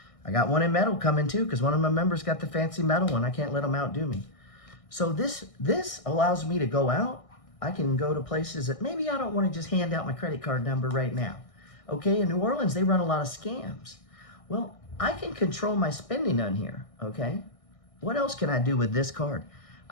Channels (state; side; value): late; right; 1.6 ms